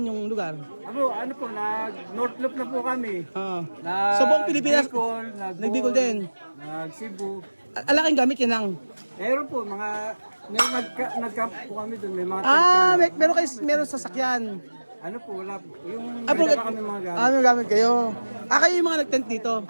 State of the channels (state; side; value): inverted; both; correlation -1.00